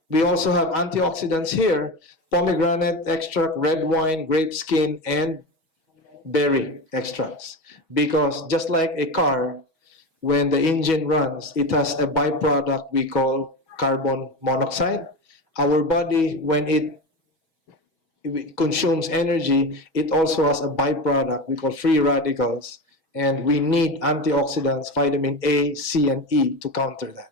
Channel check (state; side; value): late; right; 6.2 ms